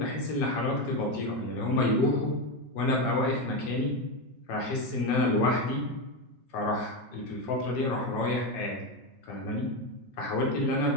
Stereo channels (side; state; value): right; late; 6.2 ms